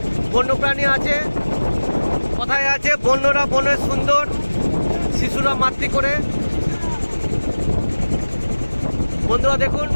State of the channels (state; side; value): inverted; both; correlation -1.00